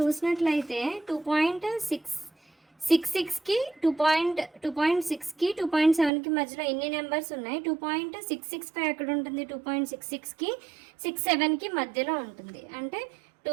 2.666కి 2.6కి 2.7కి మధ్యలో ఎన్ని నెంబర్స్ ఉన్నాయి, 2.665 ఎక్కడ ఉంటుంది, 2.66కి 67కి మధ్యలో ఉంటుంది. అంటే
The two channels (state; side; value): drops out; left; at 6.1 s